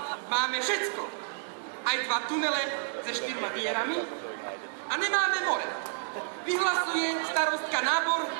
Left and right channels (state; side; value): silent; left; digital silence